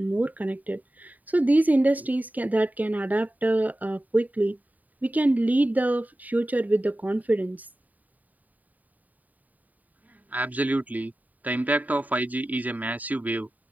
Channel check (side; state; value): left; late; 0.078 ms